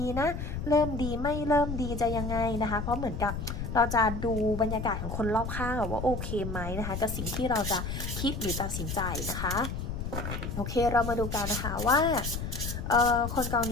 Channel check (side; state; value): left; noise; rumble, 5 dB below the sound